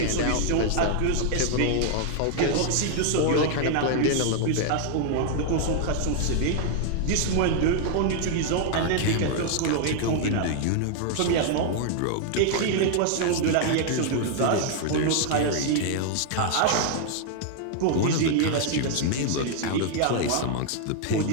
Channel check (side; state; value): both; different; correlation 0.00